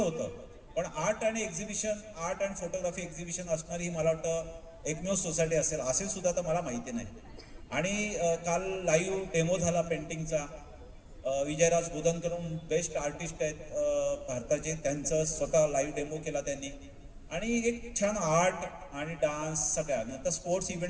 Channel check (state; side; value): identical; both; correlation 1.00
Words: होतं. पण आर्ट आणि exhibition, art and photography exhibition असणारी ही मला वाटतं एकमेव सोसायटी असेल सुद्धा तर मला माहिती नाही. आणि काल लाईव्ह डेमो झाला पेंटिंगचा. विजयराज बोधनकरून बेस्ट आर्टिस्ट आहेत भारताचे, त्यांचं स्वतः लाईव्ह डेमो केला त्यांनी. आणि एक छान आर्ट आणि डान्स सगळ्या. नंतर स्पोर्ट्स